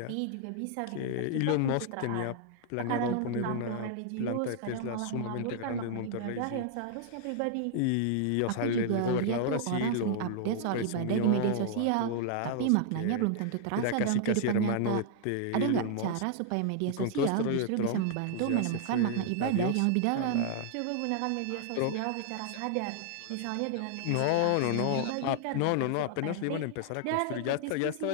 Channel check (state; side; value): different; both; correlation -0.01